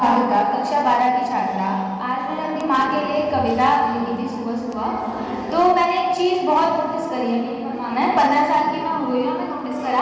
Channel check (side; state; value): both; identical; correlation 1.00